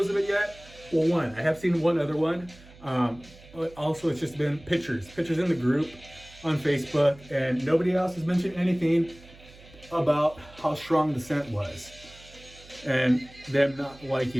of it yet. Well, one, I have seen one other one. But also, it's just been pictures in the group on Facebook, and nobody else has mentioned anything about how strong the scent was, and them not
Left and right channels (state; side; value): noise; right; hum, 22 dB below the sound